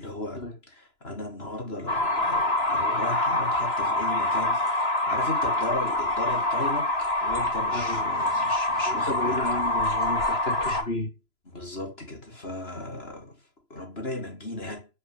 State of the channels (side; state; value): right; late; 3.0 ms